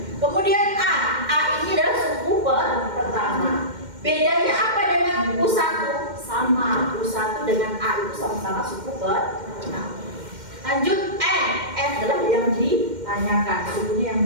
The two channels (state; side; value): late; left; 2.1 ms